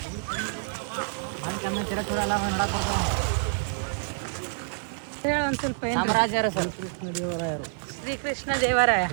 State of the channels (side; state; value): left; silent; digital silence